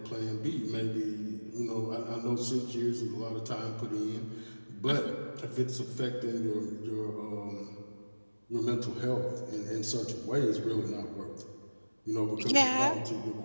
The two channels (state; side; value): inverted; both; correlation -1.00